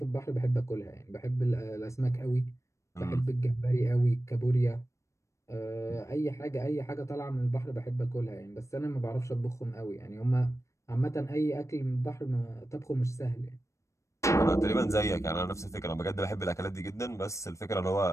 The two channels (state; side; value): late; right; 0.15 ms